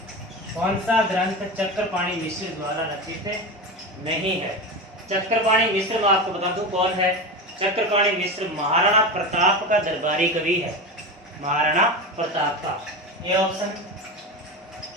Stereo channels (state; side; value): normal; both; correlation 0.23